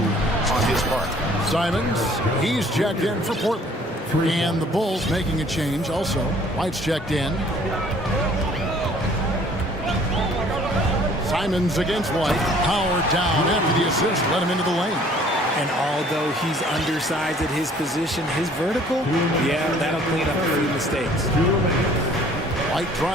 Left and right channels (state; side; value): normal; both; correlation 0.55